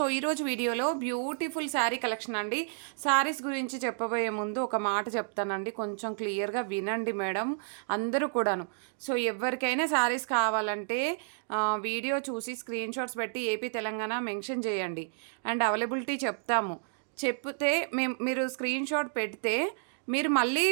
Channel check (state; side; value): silent; left; digital silence